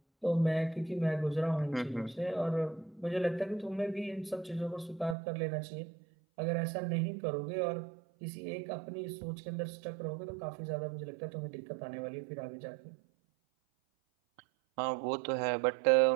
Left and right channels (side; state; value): left; drops out; at 5.2 s